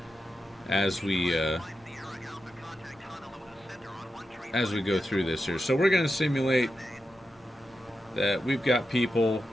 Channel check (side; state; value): both; normal; correlation 0.89